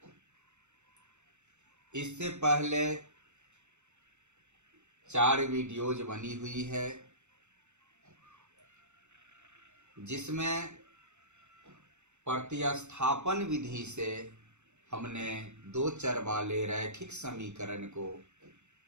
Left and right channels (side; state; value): left; late; 0.83 ms